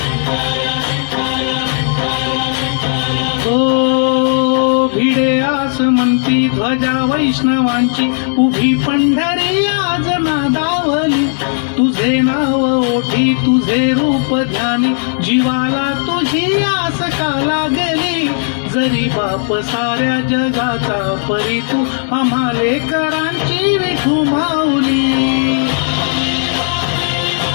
म्हणती ध्वजा वैष्णवांची उभी पंढरी आज नादावली तुझे नाव ओठी तुझे रूप ध्यानी जीवाला तुझी आस का लागली जरी बाप साऱ्या जगाचा परी तू आम्हा लेकरांची विठू माऊली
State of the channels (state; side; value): silent; right; digital silence